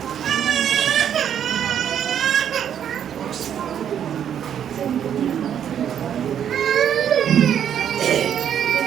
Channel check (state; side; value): quieter; left; 9.2 dB